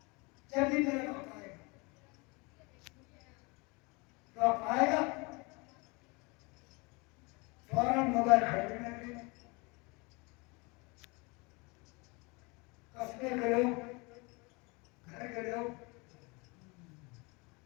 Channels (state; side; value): quieter; right; 28.0 dB